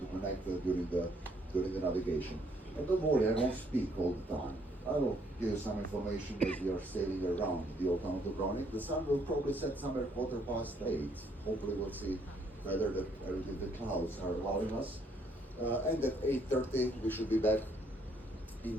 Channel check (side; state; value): both; normal; correlation 0.68